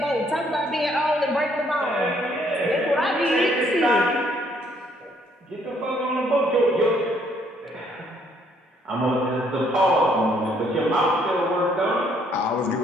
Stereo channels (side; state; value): both; normal; correlation 0.67